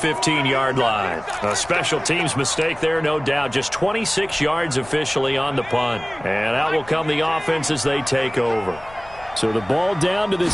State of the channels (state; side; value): noise; left; rumble, 21 dB below the sound